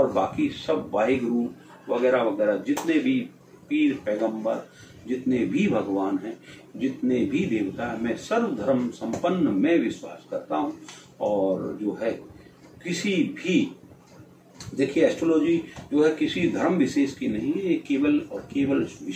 बाकी सब वाहिगुरु वगैरह वगैरह, जितने भी पीर पैगंबर, जितने भी भगवान हैं, जितने भी देवता हैं, मैं सर्व धर्म संपन्न में विश्वास करता हूं। और जो है किसी भी, देखिए एस्ट्रोलॉजी जो है किसी धर्म विशेष की नहीं है, ये केवल और केवल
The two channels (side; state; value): both; identical; correlation 1.00